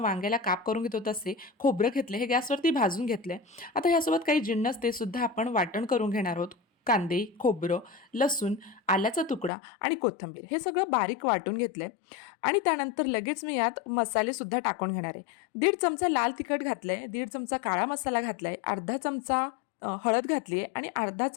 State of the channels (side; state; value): right; drops out; at 9.5 s